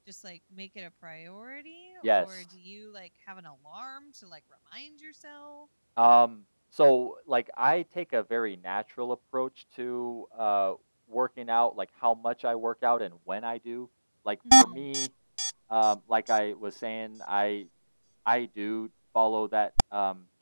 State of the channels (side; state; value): both; inverted; correlation -1.00